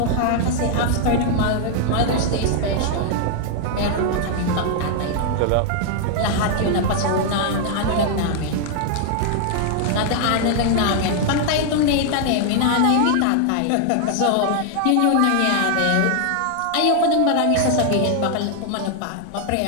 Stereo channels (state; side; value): different; both; correlation 0.00